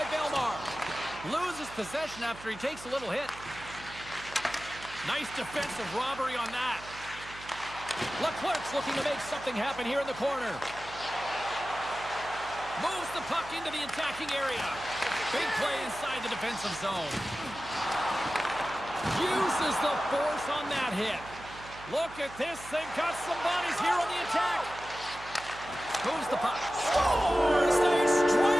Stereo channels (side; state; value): right; noise; hum, 17 dB below the sound